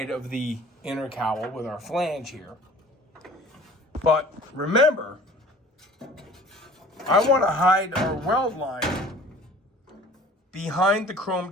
of the inner cowl with our flange here. But remember, I want to hide our weld line behind the chrome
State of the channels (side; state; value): both; normal; correlation 0.47